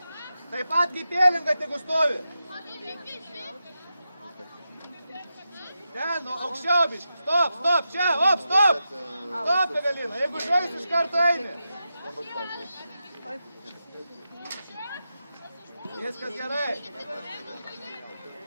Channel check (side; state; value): both; inverted; correlation -0.89